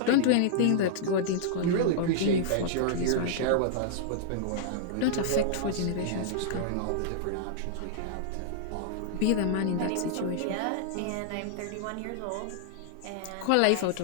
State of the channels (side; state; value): both; different; correlation -0.01